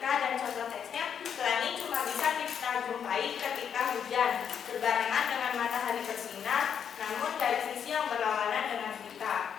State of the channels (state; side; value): quieter; right; 7.9 dB